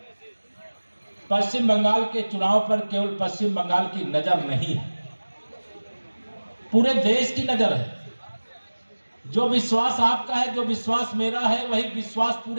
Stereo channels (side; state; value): both; inverted; correlation -1.00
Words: पश्चिम बंगाल के चुनाव पर केवल पश्चिम बंगाल की नजर नहीं है, पूरे देश की नजर है। जो विश्वास आपका है, जो विश्वास मेरा है, वही विश्वास